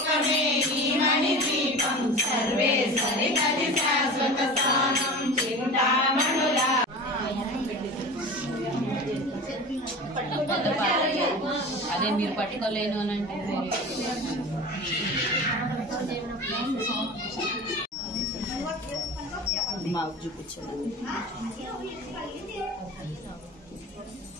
ఈ మణిదీపం సర్వేశ్వరి గది శాశ్వత స్థానం చింతామణుల అదే మీరు పట్టుకోలేను అని అంటే మాకు చూపించండి.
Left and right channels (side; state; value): both; normal; correlation 0.34